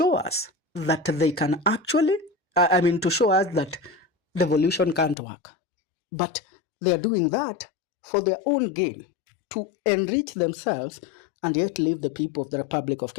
us that they can actually, to show us that devolution can't work. But they are doing that for their own gain, to enrich themselves and yet leave the people of the Republic of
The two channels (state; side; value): drops out; right; at 5.2 s